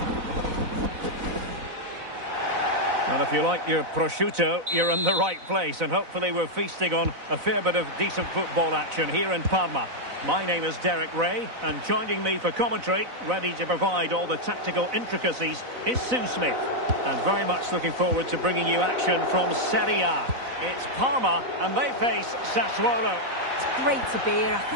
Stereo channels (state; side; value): late; left; 4.0 ms